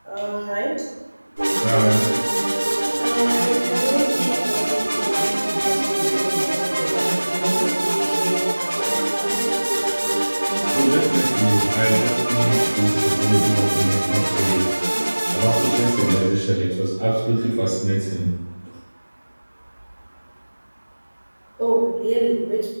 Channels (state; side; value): inverted; both; correlation -1.00